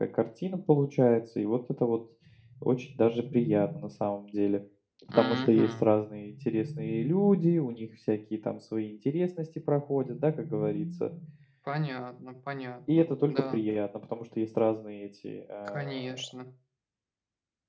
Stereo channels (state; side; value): identical; both; correlation 1.00